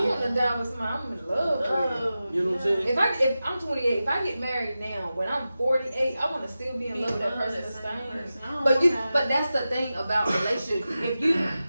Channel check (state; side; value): inverted; both; correlation -0.93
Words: want to die with somebody I'm in love with. You know what I'm saying? If I'm 28, if I get married now, when I'm 48, I want to still be in love with that person the same. But that's the thing about relationships. If you